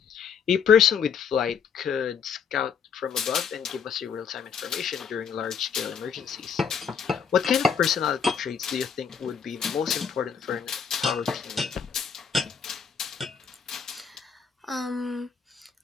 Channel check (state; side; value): quieter; right; 6.8 dB